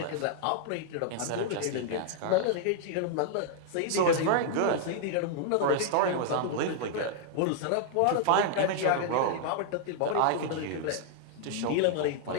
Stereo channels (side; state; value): both; different; correlation -0.01